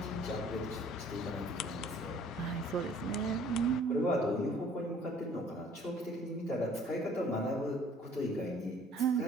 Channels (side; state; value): both; normal; correlation 0.55